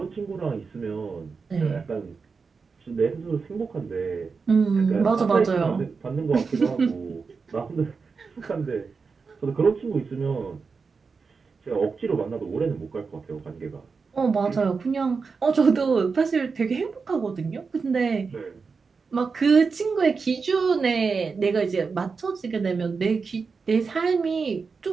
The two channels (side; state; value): left; quieter; 5.0 dB